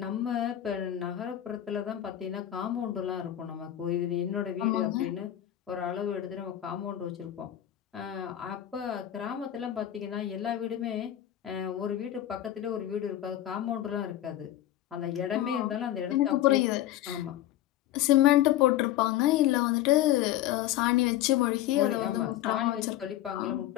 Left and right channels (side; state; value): right; quieter; 12.6 dB